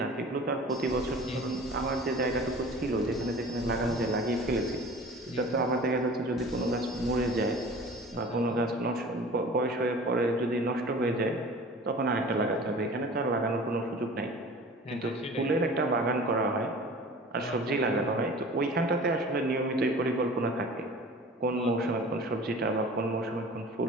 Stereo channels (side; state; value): both; normal; correlation 0.42